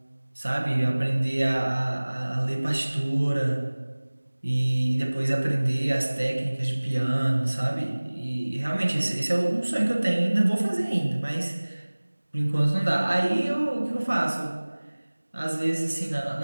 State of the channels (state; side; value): inverted; both; correlation -1.00